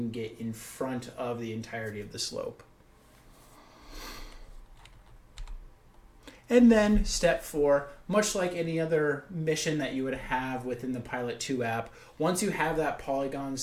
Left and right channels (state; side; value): identical; both; correlation 1.00